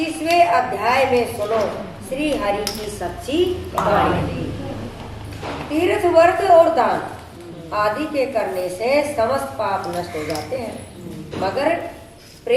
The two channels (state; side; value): identical; both; correlation 1.00